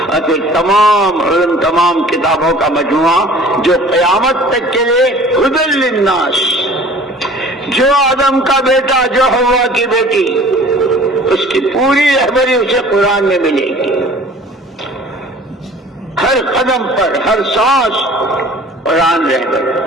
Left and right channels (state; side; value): normal; both; correlation 0.48